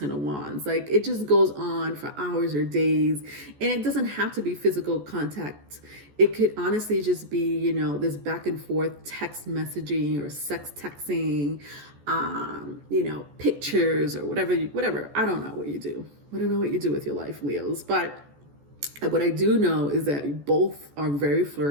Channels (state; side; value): late; left; 14 ms